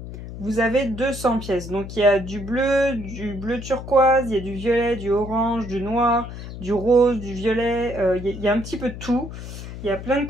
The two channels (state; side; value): noise; left; hum, 10 dB below the sound